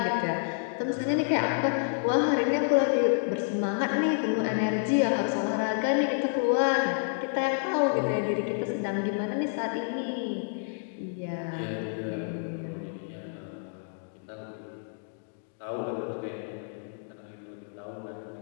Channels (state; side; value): silent; right; digital silence